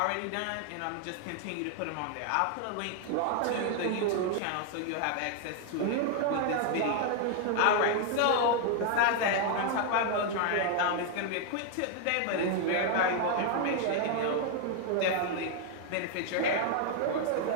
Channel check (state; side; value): different; both; correlation 0.00